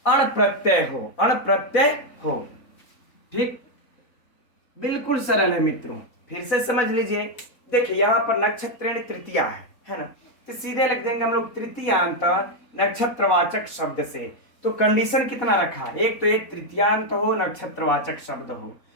अण प्रत्यय हो, अण प्रत्यय हो। ठीक, बिल्कुल सरल है मित्रों, फिर से समझ लीजिए। देखिए यहाँ पर नक्षत्रेण तृतीया है ना, तो सीधे लिख देंगे हम लोग तृतीयांत नक्षत्रवाचक शब्द से। तो कंडीशन कितना रखा? एक तो ये तृतीयांत हो, नक्षत्रवाचक शब्द हो,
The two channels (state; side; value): late; right; 4.1 ms